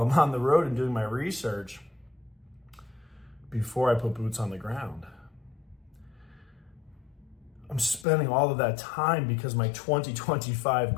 I'm on the road and doing my research before I put boots on the ground. I'm spending all of that time because my 2025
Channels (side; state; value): right; drops out; at 8.1 s